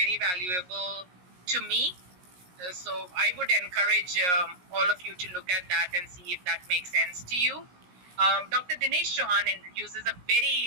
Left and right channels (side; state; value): left; late; 17 ms